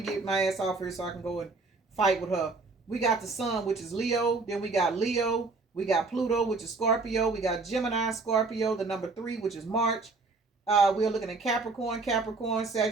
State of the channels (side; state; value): left; quieter; 3.8 dB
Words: get my ass off here so I can go and fight with her. We got the sun, which is Leo. Then we got Leo. We got Pluto, which is Scorpio. We got Gemini, Scorpio, the number 3, which is March. We're looking at Capricorn,